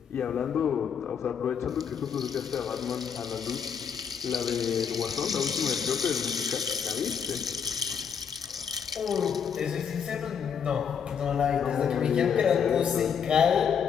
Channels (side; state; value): right; quieter; 7.2 dB